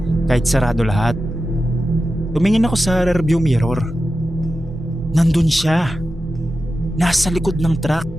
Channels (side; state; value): both; normal; correlation 0.92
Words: kahit sarado lahat. Tumingin ako sa rearview mirror. Nandun siya, nasa likod ng truck.